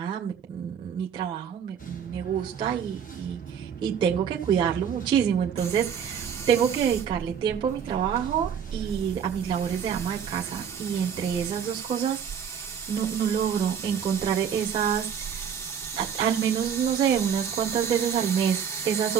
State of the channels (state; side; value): quieter; left; 7.9 dB